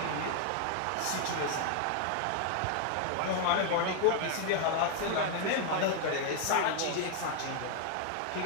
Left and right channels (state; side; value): different; both; correlation 0.00